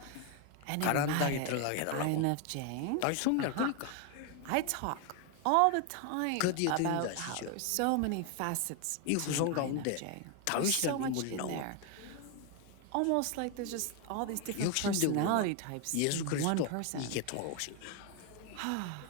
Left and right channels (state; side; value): different; both; correlation 0.01